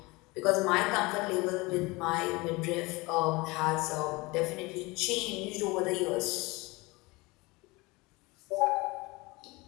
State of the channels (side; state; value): right; quieter; 23.8 dB